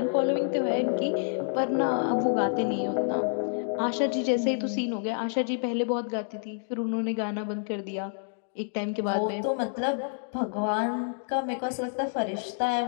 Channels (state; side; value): silent; right; digital silence